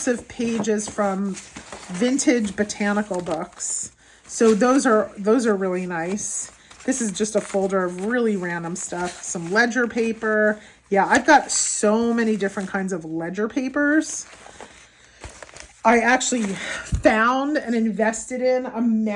of pages from vintage botanical books. So those are really nice. This is just a folder of really random stuff. Some ledger paper. Yeah, I've got so many different kinds of ledger papers. I actually found and invested in a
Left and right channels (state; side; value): identical; both; correlation 1.00